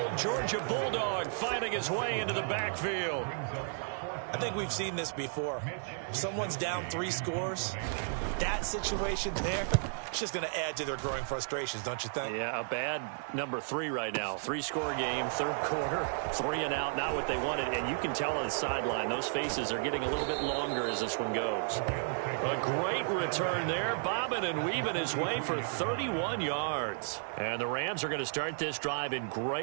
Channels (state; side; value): silent; left; 55 dB below the other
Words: Georgia Bulldog, finding his way into the backfield. I think we've seen this before. Someone's down 3 scores. That situation there, it's just going to add to their growing frustrations, don't you think? Yeah, a bad number 3 right now. 3-score game, 3rd quarter, 3 and out, not what they wanted. And you can tell on the sideline, those faces are getting a little bit longer as this one goes. A great return there, bobbing and weaving his way for 31 yards. And the Rams are going to start this drive in